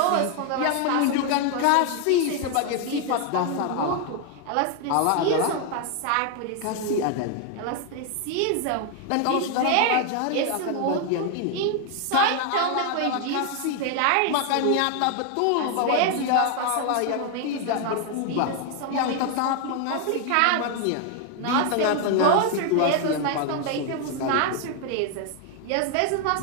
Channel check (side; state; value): both; different; correlation 0.01